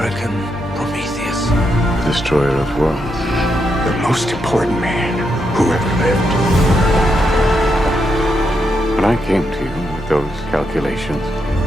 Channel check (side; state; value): both; normal; correlation 0.82